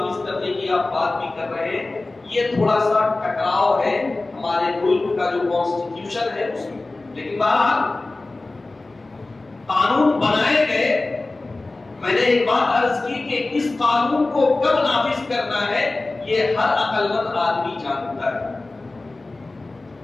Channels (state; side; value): quieter; right; 3.2 dB